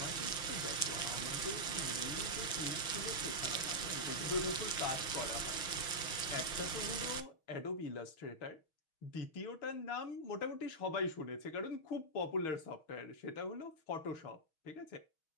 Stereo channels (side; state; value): right; late; 6.4 ms